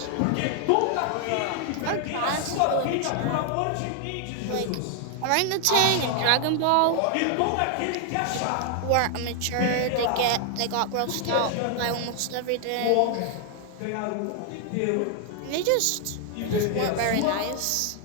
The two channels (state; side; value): different; both; correlation 0.00